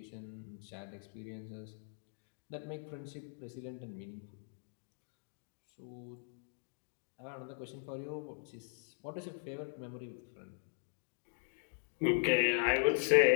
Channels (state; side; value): silent; right; digital silence